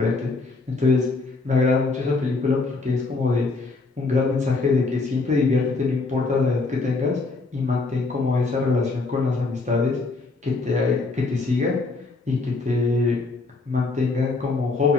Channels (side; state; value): right; quieter; 3.7 dB